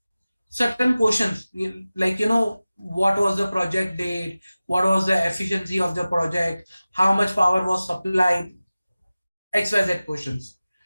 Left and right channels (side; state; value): both; inverted; correlation -0.97